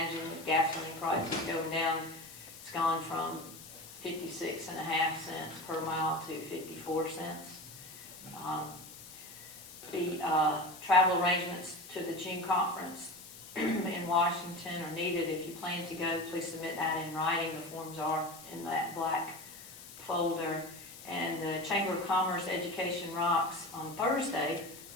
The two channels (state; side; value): noise; left; hiss, 16 dB below the sound